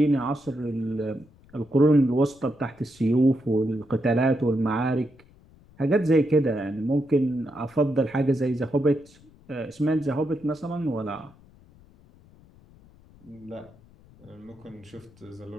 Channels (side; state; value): left; noise; rumble, 26 dB below the sound